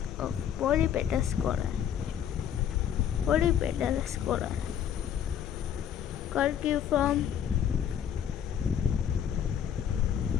of polypetalous corolla. Polypetalous corolla: curciform,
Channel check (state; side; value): quieter; right; 9.1 dB